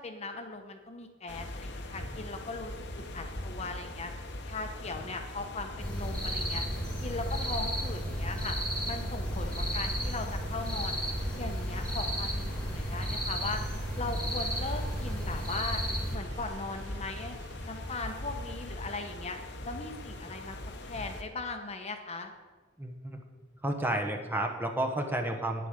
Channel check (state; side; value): normal; both; correlation 0.48